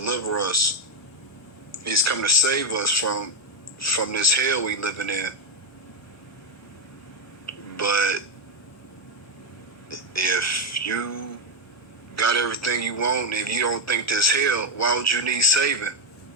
us. He's coming to save us from this hell we living in. But if you got everything you want, if you don't think this hell, why would you need saving?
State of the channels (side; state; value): both; normal; correlation 0.04